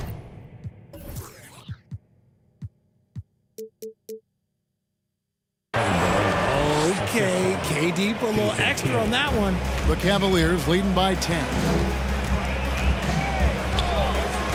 Okay, KD put a little extra on that one. The Cavaliers leading by 10.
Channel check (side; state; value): both; identical; correlation 1.00